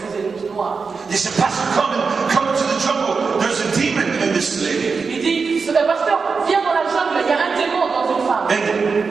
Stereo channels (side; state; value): left; quieter; 5.0 dB